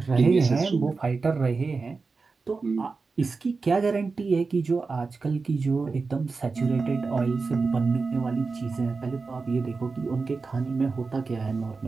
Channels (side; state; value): left; quieter; 4.3 dB